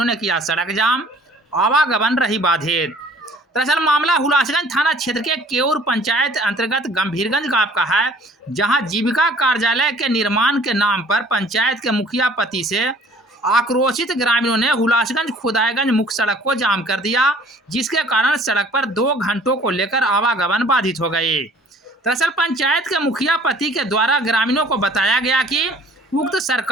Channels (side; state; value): both; normal; correlation 0.54